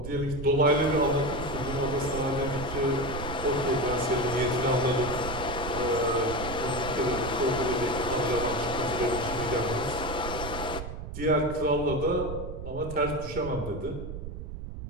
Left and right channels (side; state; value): right; noise; rumble, 8 dB below the sound